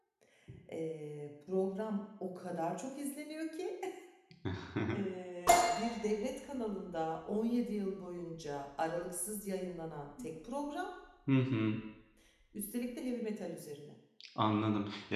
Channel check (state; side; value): identical; both; correlation 1.00